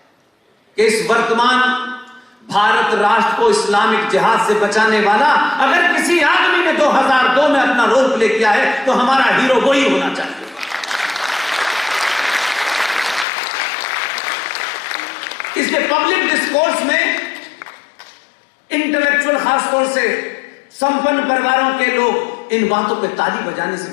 कि इस वर्तमान भारत राष्ट्र को इस्लामिक जिहाद से बचाने वाला अगर किसी आदमी ने 2002 में अपना रोल प्ले किया है तो हमारा हीरो वही होना चाहिए। इसलिए पब्लिक डिस्कोर्स में इंटेलेक्चुअल खासतौर से संपन्न परिवारों के लोग इन बातों पे ताली बजाने से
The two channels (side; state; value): right; drops out; at 13.2 s